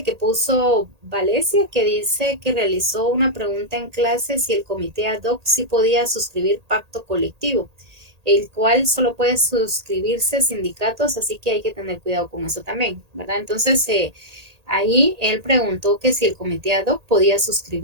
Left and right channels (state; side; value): late; left; 1.8 ms